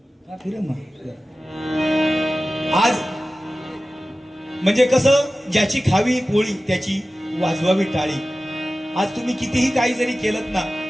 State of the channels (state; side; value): normal; both; correlation 0.96